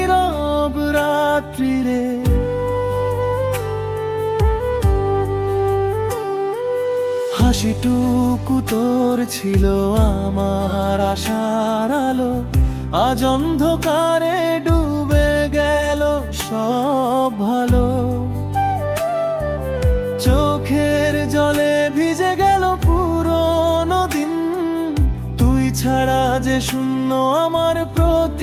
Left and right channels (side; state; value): both; identical; correlation 1.00